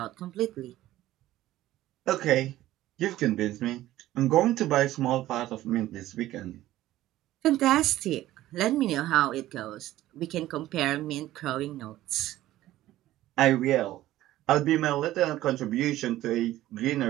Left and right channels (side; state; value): left; quieter; 14.9 dB